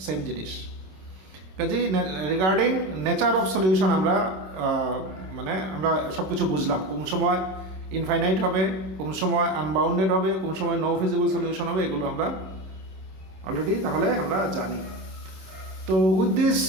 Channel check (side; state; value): left; late; 26 ms